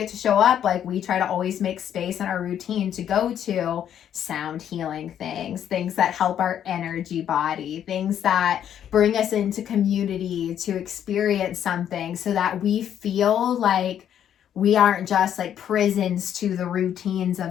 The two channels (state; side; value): quieter; right; 9.8 dB